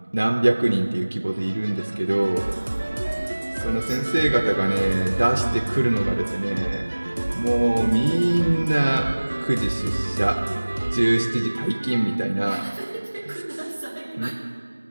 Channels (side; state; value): both; inverted; correlation -1.00